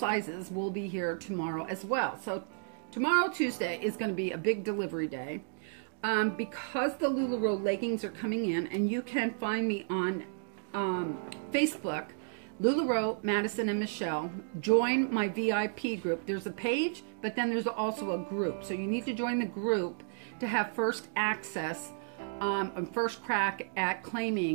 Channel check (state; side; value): silent; left; digital silence